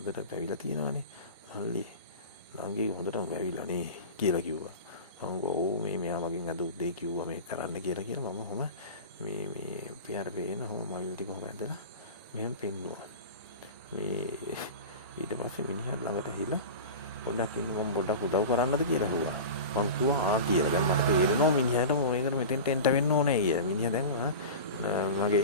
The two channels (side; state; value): both; inverted; correlation -0.30